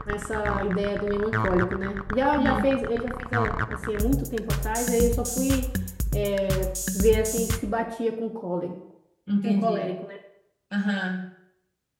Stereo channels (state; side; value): identical; both; correlation 1.00